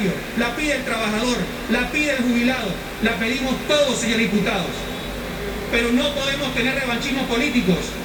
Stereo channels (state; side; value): identical; both; correlation 1.00